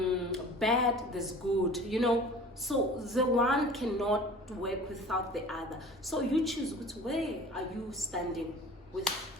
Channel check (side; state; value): both; normal; correlation 0.43